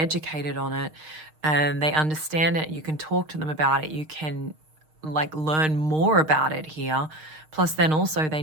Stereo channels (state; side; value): late; left; 6.5 ms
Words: on it and they understand it. You can talk to them about it. You can learn more about it here. Plus then also they